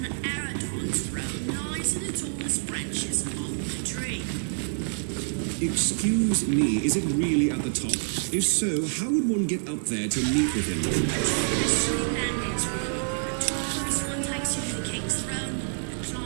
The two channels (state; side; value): silent; left; digital silence